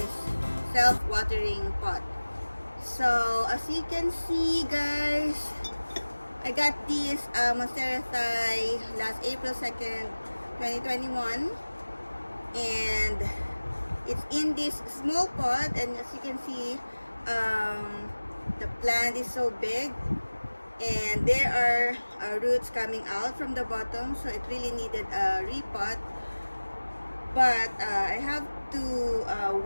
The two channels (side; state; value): both; inverted; correlation -1.00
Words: self-watering pot. So as you can see, guys, I got this Monstera Thai last April 2nd, 2021, and it's in this small pot, and as you can see, the plant is so big and there are roots coming out from the bottom, so it really needed a repot. But I have to